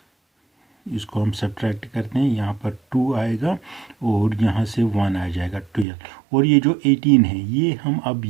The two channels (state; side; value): drops out; left; at 5.9 s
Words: इसको हम सब्ट्रैक्ट करते हैं, यहाँ पर 2 आएगा और यहाँ से 1 आ जाएगा 12। और ये जो 18 है ये हम अब